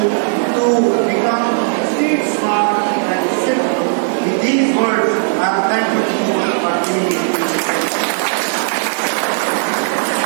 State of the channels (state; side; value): silent; left; digital silence